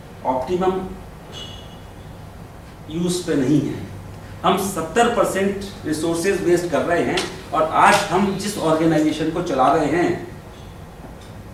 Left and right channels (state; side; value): identical; both; correlation 1.00